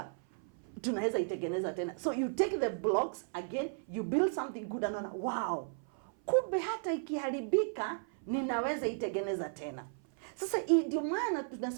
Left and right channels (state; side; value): silent; left; 55 dB below the other